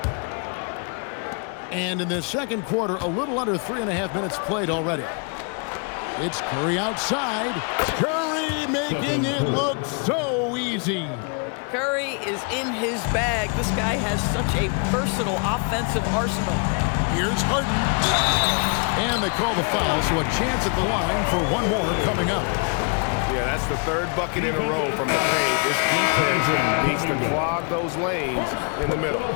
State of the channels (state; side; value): quieter; right; 37.6 dB